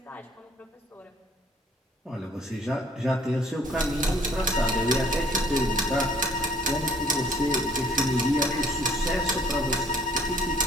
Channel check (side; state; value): both; normal; correlation 0.59